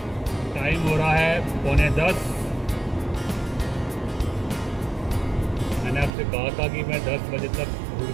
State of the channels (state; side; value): drops out; left; at 6.1 s